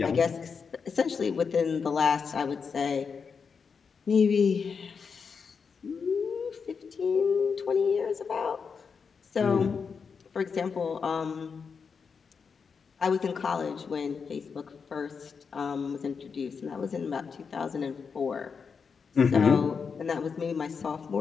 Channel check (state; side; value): quieter; right; 5.7 dB